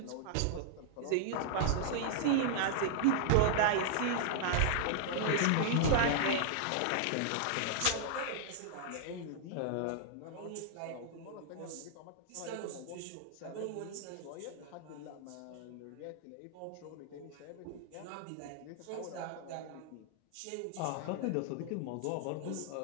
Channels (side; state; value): both; different; correlation -0.01